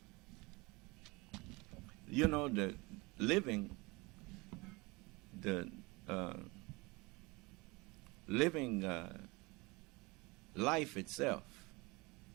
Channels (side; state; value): left; quieter; 25.1 dB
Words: You know, the living life itself